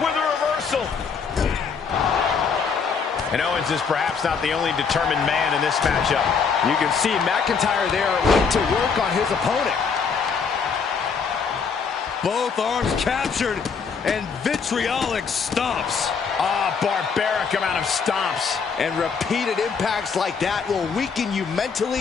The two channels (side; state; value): right; quieter; 5.8 dB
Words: a reversal. And Owens is perhaps not the only determined man in this matchup. You can see McIntyre there went to work on his opponent. Both arms captured and vitriolic stomps. Barbaric amount of stomps. And repeated impacts like that will weaken you